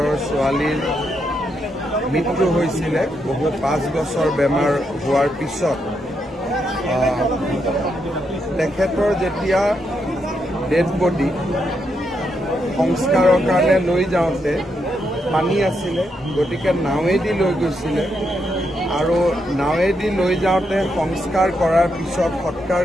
ছোৱালীৰ মৃত্যু হৈছিলে বহু 5 বছৰ বেমাৰ হোৱাৰ পিছত তেখেতৰ যেতিয়া ডেড বডি সংস্কাৰৰ কাৰণে লৈ যাওঁতে পানী আছিলে গতিকে নাৱেদি লৈ গৈছিলে আৰু নাৱেদি লৈ যাওঁতে সংস্কাৰ কৰাৰ পিছত সৎকাৰ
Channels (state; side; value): normal; both; correlation 0.81